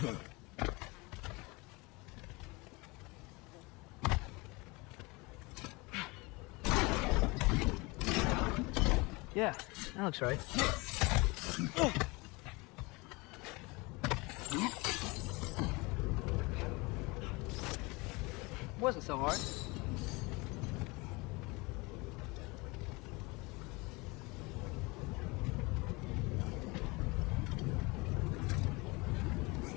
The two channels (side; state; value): right; quieter; 25.4 dB